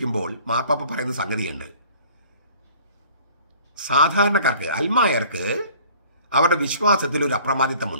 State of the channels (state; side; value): inverted; both; correlation -0.51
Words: മാർപ്പാപ്പ പറയുന്ന സംഗതിയുണ്ട്. സാധാരണക്കാർക്ക്, അൽമായർക്ക് അവരുടെ വിശ്വാസത്തിൽ ഒരു